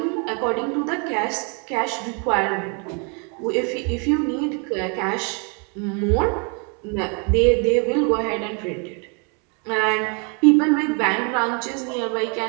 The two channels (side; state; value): left; quieter; 36.3 dB